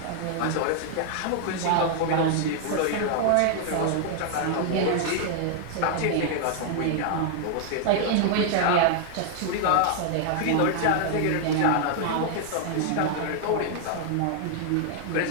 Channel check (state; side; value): different; both; correlation 0.00